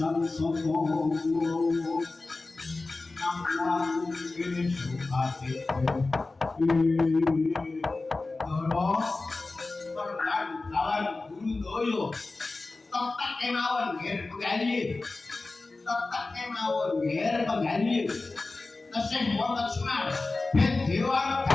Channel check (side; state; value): right; quieter; 3.4 dB